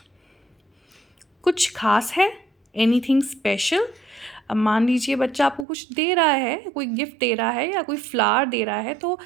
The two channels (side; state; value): left; drops out; at 5.7 s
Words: कुछ खास है, एनीथिंग स्पेशल। अब मान लीजिए बच्चा आपको कुछ दे रहा है, कोई गिफ्ट दे रहा है या कोई फ्लावर दे रहा है, तो